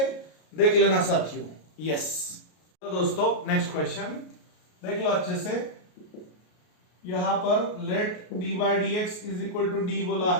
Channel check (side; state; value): right; late; 33 ms